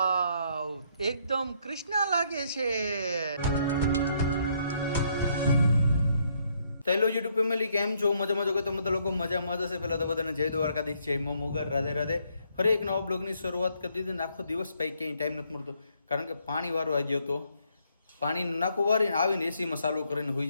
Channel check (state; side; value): inverted; both; correlation -0.71